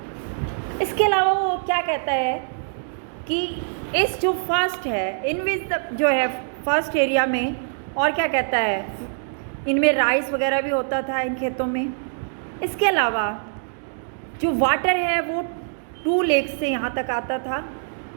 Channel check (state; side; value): silent; left; digital silence